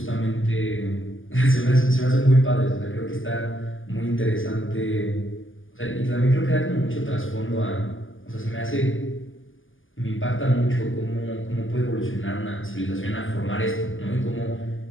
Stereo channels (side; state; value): right; late; 0.58 ms